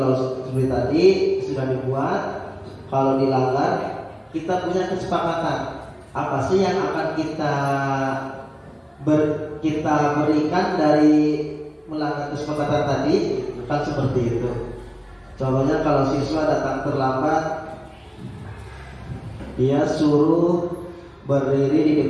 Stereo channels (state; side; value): identical; both; correlation 1.00